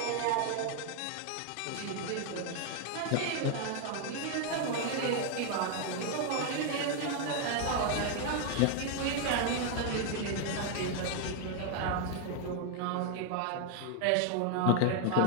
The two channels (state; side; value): different; both; correlation 0.00